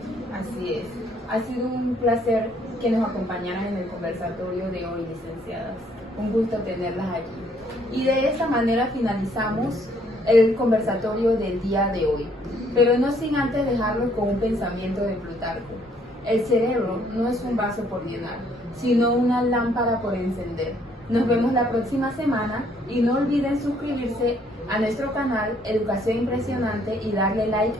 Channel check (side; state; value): both; normal; correlation 0.66